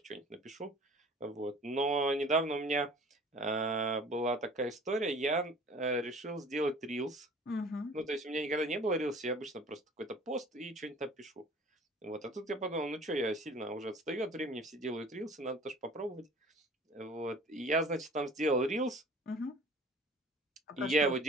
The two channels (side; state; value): both; normal; correlation 0.47